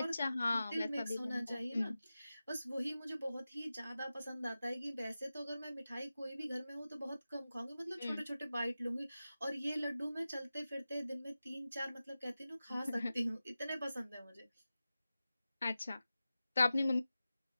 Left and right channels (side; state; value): both; inverted; correlation -0.94